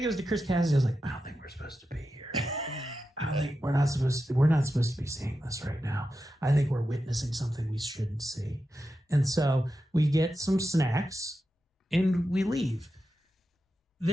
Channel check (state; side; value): normal; both; correlation 0.90